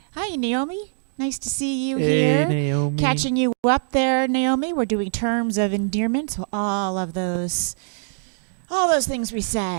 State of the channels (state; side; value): silent; left; digital silence